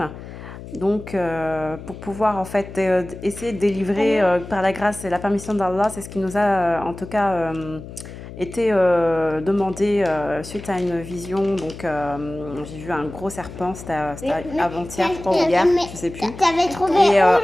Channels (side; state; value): left; noise; hum, 13 dB below the sound